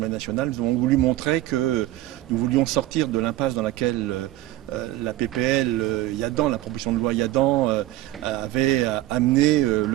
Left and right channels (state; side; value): quieter; left; 15.7 dB